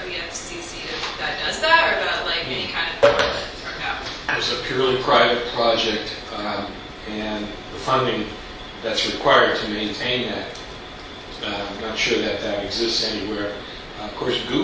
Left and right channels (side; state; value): both; identical; correlation 1.00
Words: the FCC that does that, or that like any kind of board that's turned out. It's a purely private project, and the funding that's required to maintain that, I'm not sure that exists anywhere. Of course,